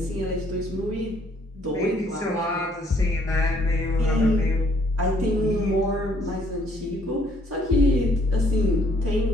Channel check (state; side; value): normal; both; correlation 0.65